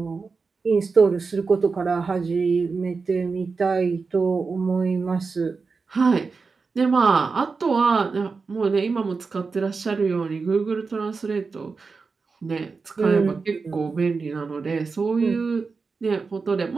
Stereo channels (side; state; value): left; quieter; 4.6 dB